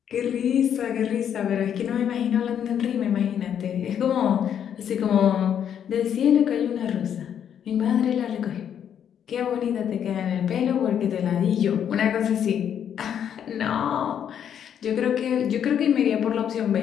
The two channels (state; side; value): quieter; right; 9.0 dB